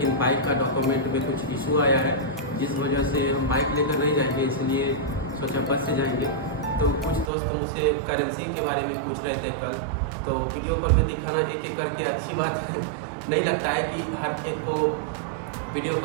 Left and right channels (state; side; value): drops out; left; at 7.3 s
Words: बाइक का डॉक्यूमेंट में कुछ इशू आया है, जिस वजह से हम बाइक लेकर नहीं जाएंगे, इसलिए सोचा बस से जाएंगे। तो कुछ दोस्त मुझसे करेंसी के बारे में पूछ रहे थे कल, तो वीडियो कॉल में दिखाना एक एक करके अच्छी बात नहीं लगता है कि हर एक को वीडियो